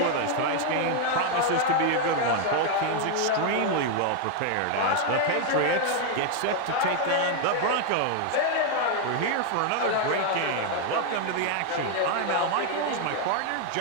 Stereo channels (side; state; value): both; different; correlation 0.00